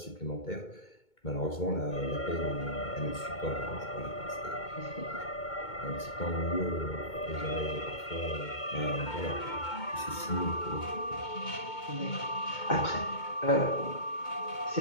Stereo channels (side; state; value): right; late; 2.2 ms